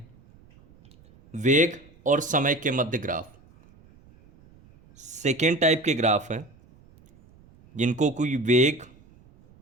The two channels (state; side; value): noise; right; rumble, 27 dB below the sound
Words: वेग और समय के मध्य ग्राफ। सेकेंड टाइप के ग्राफ हैं जिनको कोई वेग